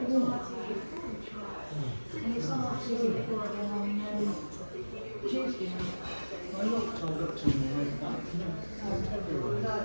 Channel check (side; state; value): both; inverted; correlation -1.00